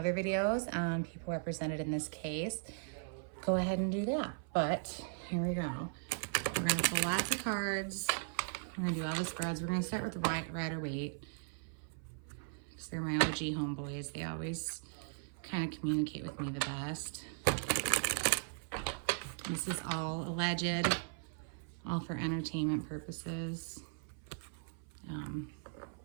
videos on people represented in this case, go ahead and do that. But here we go. We're going to pull lots of cards. We're going to do all the spreads. We're going to start with the Rider-Waite, because they're my OG homeboys. They always kind of communicate with me the best. This is all alleged, all for entertainment purposes.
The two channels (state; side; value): silent; left; 53 dB below the other